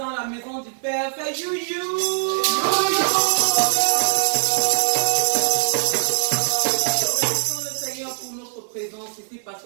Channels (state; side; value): silent; left; digital silence